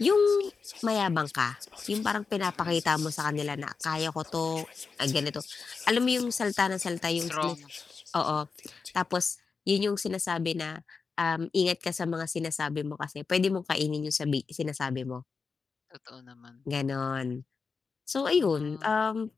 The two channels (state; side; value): quieter; right; 4.9 dB